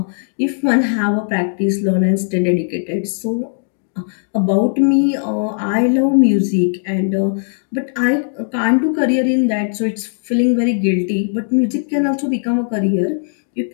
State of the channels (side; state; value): right; silent; digital silence